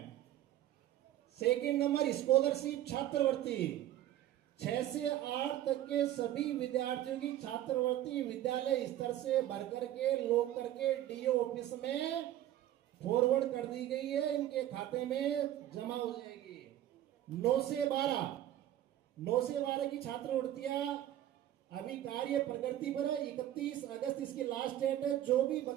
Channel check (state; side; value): quieter; left; 12.8 dB